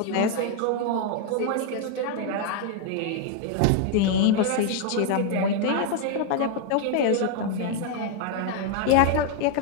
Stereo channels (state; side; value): different; both; correlation 0.00